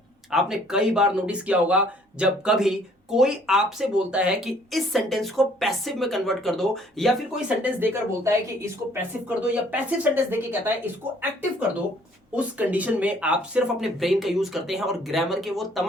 आपने कई बार नोटिस किया होगा जब कभी कोई आपसे बोलता है कि इस सेंटेंस को पैसिव में कन्वर्ट कर दो, या फिर कोई सेंटेंस देकर बोलता है कि इसको पैसिव कर दो, या पैसिव सेंटेंस देके कहता है इसको एक्टिव कर दो। उस कंडीशन में आप सिर्फ अपने ब्रेन का यूज करते हैं और ग्रामर के वो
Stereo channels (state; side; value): normal; both; correlation 0.60